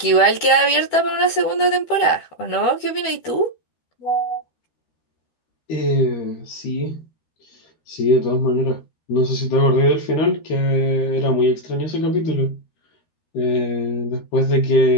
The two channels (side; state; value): right; late; 12 ms